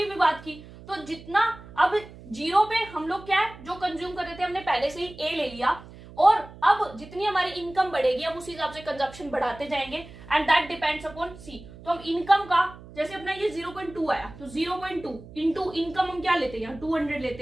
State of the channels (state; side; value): noise; right; hum, 18 dB below the sound